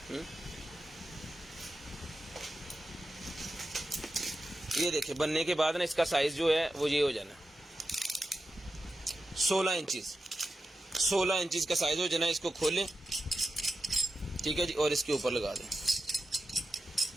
ये देखिए, बनने के बाद ना इसका साइज जो है वो ये हो जाना 16 इंचेस, 16 इंचेस का साइज हो जाना। इसको खोलें, ठीक है जी, और इसके ऊपर लगा दें,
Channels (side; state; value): both; normal; correlation 0.90